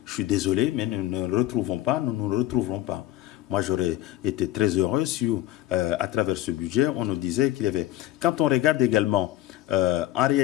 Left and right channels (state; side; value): quieter; right; 14.7 dB